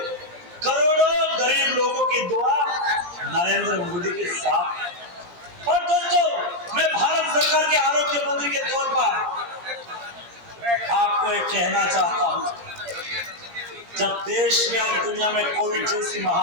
करोड़ों गरीब लोगों की दुआ नरेंद्र मोदी के साथ है। और दोस्तों मैं भारत सरकार के आरोग्य मंत्री के तौर पर आपको एक कहना चाहता हूं, जब देश में और दुनिया में कोविड जैसी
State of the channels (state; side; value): late; left; 17 ms